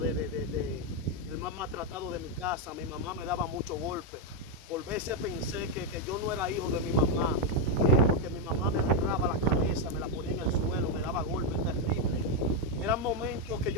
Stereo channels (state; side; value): normal; both; correlation 0.03